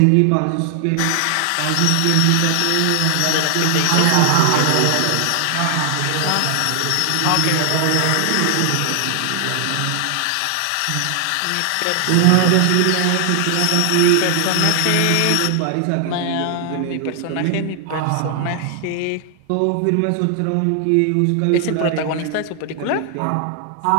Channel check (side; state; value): both; different; correlation 0.00